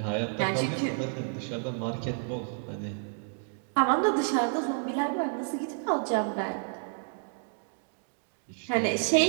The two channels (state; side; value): silent; left; digital silence